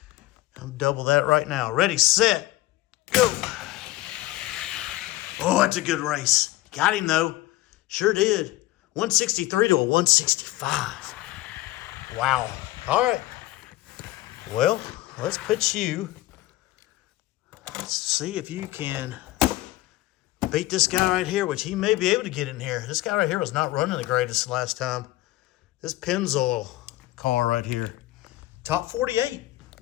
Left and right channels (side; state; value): right; quieter; 17.2 dB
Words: I'm double that right now. Ready, set, go. Oh, that's a good race. Got him, though. Sure did. 163 to a 165. Wow. All right. Well, let's put you. Let's see if you can beat this guy right here, which he may be able to get in here. This guy right here was not running the greatest last time. This Pennzoil car right here. Top 48.